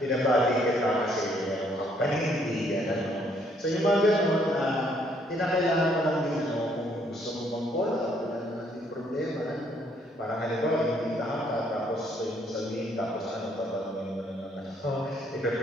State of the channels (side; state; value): both; normal; correlation 0.67